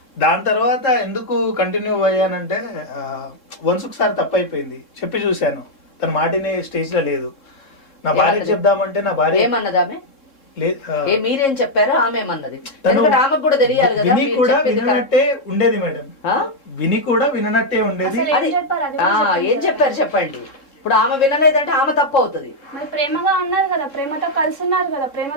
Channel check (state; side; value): late; right; 3.7 ms